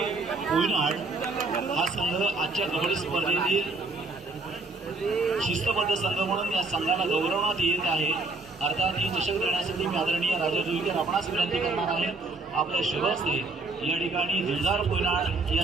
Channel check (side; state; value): left; quieter; 3.4 dB